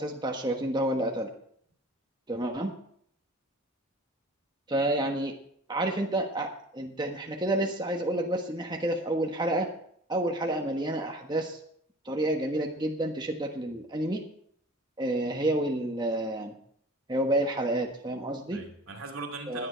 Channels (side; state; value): both; normal; correlation 0.43